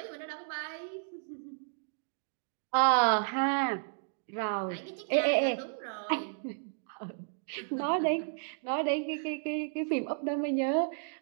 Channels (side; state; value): left; silent; digital silence